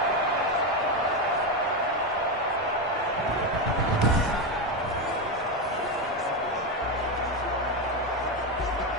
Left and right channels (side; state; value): both; normal; correlation 0.11